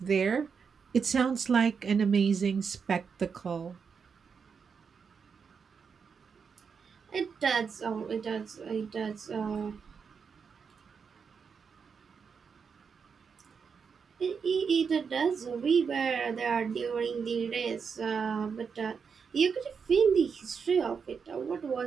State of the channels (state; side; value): quieter; left; 6.0 dB